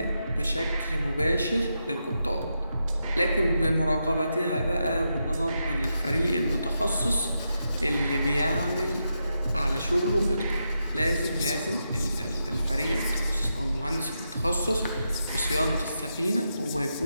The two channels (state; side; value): inverted; both; correlation -0.85